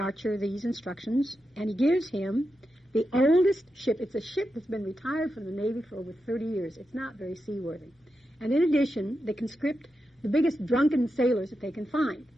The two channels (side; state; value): both; normal; correlation 0.88